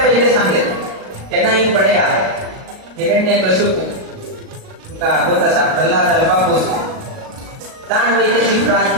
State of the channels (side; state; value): left; late; 38 ms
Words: सांगेल त्यांनाही पडया हिरण्य कशुपू तुका होत असा प्रल्हाद अल्पापूस ताण वैद्याची